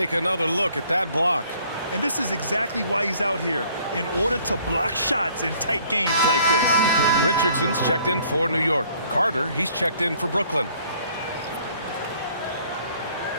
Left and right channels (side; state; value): both; inverted; correlation -0.60